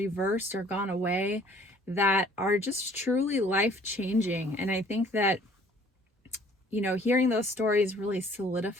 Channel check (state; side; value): normal; both; correlation 0.55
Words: or gone away, that are just truly life-changing. And I think that hearing those stories really